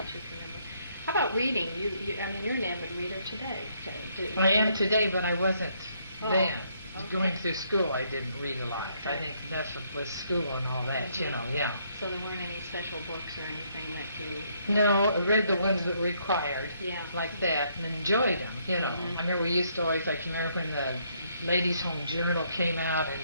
you can remember. How about reading? You're an avid reader today. So I am today, but I wasn't then. Okay. Going through school, I didn't read a lot. Okay. I think that's what was school and all that, yeah. So there weren't any special books or anything that you... No, I read the ones that were required, yeah, like that, and enjoyed them, I remember we used to always, remember when the Ladies' Home Journal came out,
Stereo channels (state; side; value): inverted; both; correlation -0.71